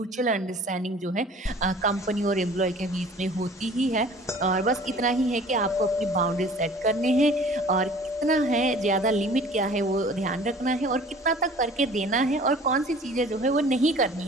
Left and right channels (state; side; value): normal; both; correlation 0.47